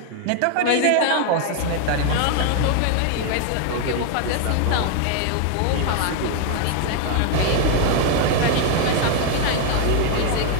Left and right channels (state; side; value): different; both; correlation 0.00